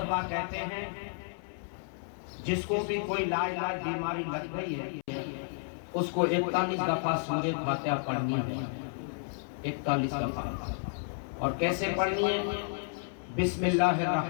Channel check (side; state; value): right; silent; 57 dB below the other